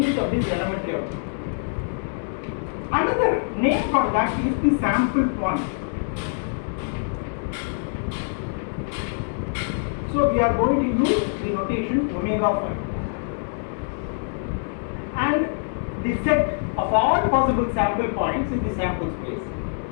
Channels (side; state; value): right; silent; digital silence